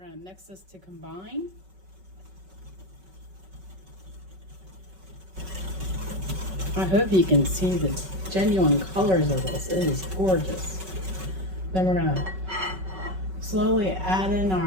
going to mix this to combine. I hope you can see the genuine colors of this. It is gorgeous. Then we're gonna slowly add in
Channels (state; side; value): late; left; 5.3 ms